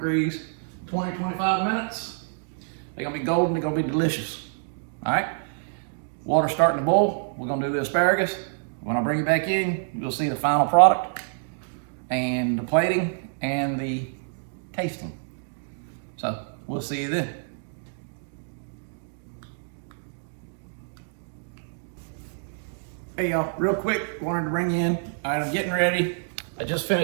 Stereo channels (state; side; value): silent; left; digital silence